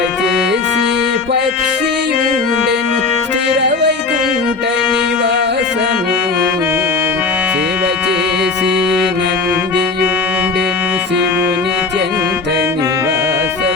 చేసి పక్షియుండెను స్థిర వైకుంఠ నివాసము సేవ చేసి నందియుండెను శివుని చెంత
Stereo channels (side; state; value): right; quieter; 4.2 dB